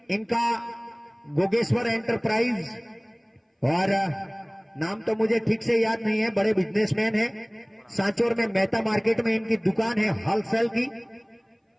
इनका गोगेश्वर एंटरप्राइज और नाम तो मुझे ठीक से याद नहीं है, बड़े बिजनेसमैन हैं। सांचौर में मेहता मार्केट में इनकी दुकान है होलसेल की।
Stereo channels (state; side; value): identical; both; correlation 1.00